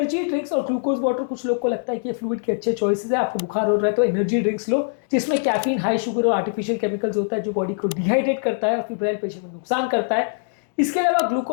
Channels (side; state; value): right; silent; digital silence